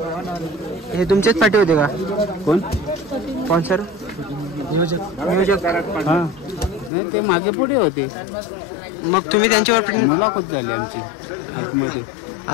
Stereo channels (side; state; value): right; drops out; at 6.9 s